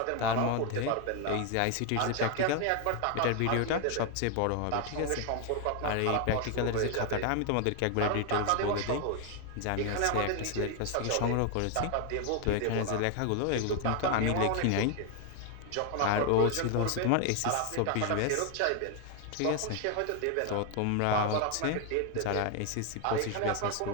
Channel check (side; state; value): both; different; correlation 0.01